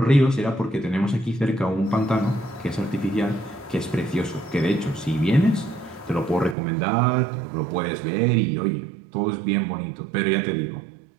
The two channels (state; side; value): drops out; left; at 6.6 s